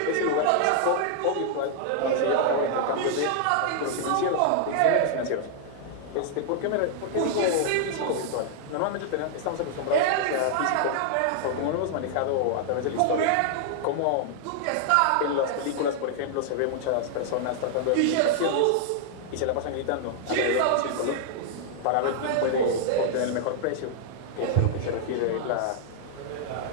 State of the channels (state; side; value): different; both; correlation -0.01